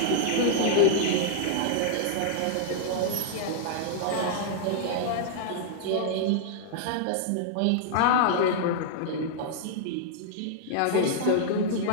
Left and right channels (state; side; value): different; both; correlation -0.01